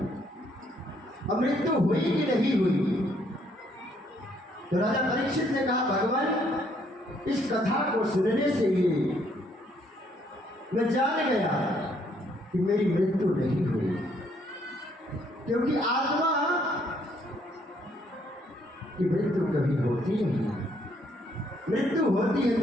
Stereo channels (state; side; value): normal; both; correlation 0.68